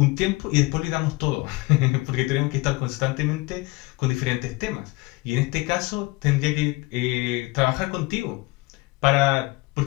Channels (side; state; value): right; quieter; 22.8 dB